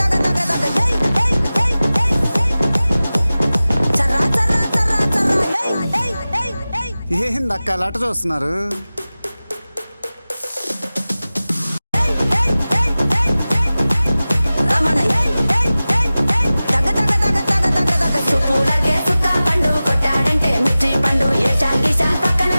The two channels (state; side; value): inverted; both; correlation -0.97